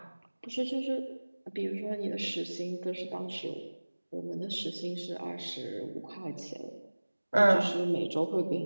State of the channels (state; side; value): inverted; both; correlation -1.00